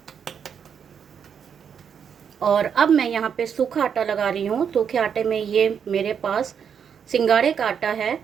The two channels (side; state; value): left; quieter; 7.5 dB